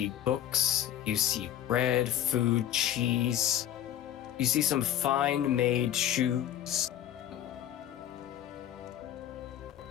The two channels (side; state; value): right; quieter; 11.5 dB